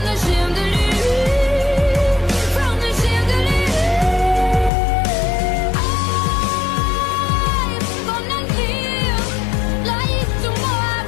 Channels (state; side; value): drops out; right; at 4.7 s